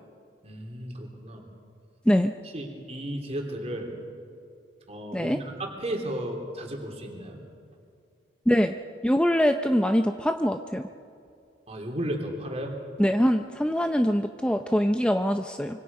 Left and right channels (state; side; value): normal; both; correlation 0.92